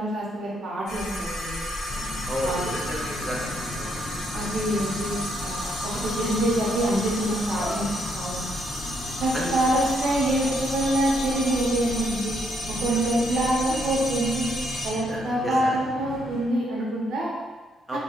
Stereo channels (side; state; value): both; normal; correlation 0.73